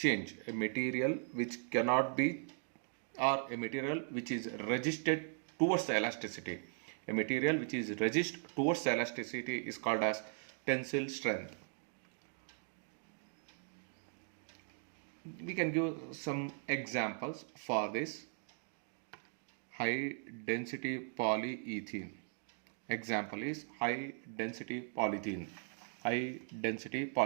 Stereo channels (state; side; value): silent; left; 52 dB below the other